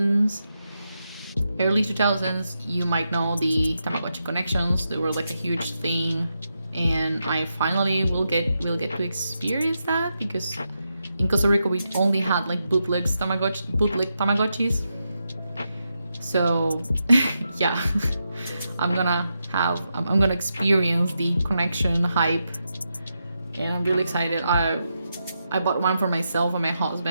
early 2000s, you might know the Tamagotchi connections. They were like a huge thing, and I finally will get to experience that because in Costa Rica we only had like bootleg Tamagotchis. So yeah, I'm gonna experience the connection hype, and I'm really excited. I bought one for myself and my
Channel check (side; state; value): both; inverted; correlation -0.86